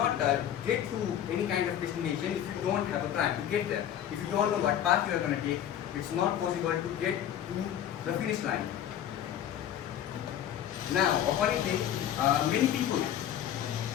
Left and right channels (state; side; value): quieter; right; 10.5 dB